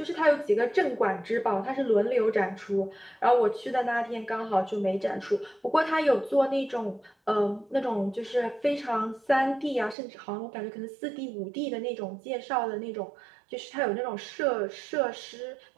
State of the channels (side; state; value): left; drops out; at 10.0 s